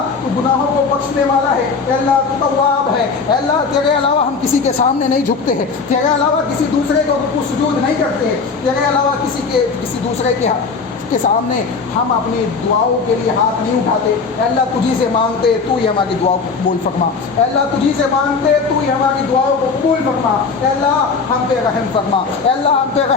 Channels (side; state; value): right; quieter; 4.9 dB